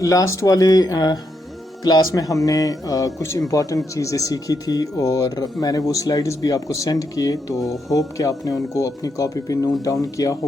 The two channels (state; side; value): normal; both; correlation 0.81